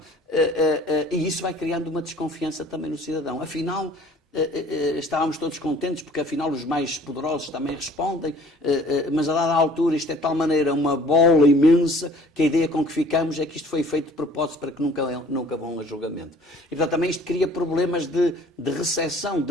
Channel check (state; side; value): normal; both; correlation 0.52